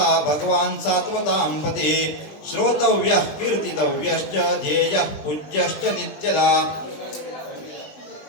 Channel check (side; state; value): right; late; 20 ms